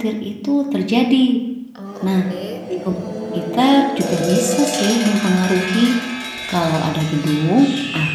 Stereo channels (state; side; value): identical; both; correlation 1.00